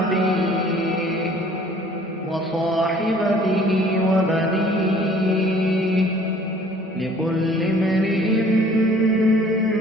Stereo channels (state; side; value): normal; both; correlation 0.54